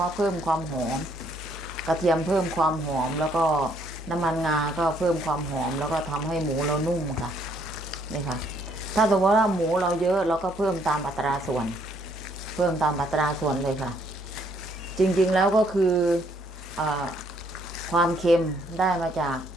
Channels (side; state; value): both; normal; correlation 0.67